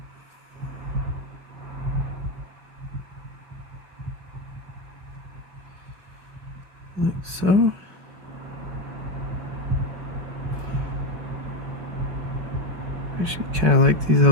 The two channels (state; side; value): late; left; 5.3 ms